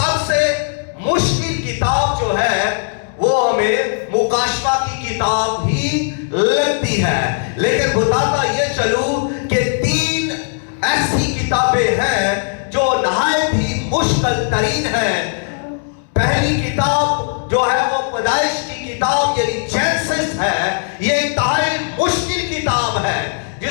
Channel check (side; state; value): right; silent; digital silence